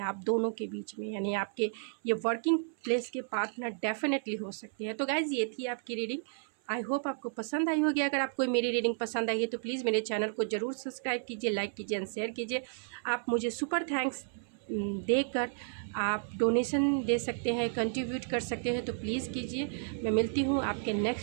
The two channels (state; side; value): silent; left; 56 dB below the other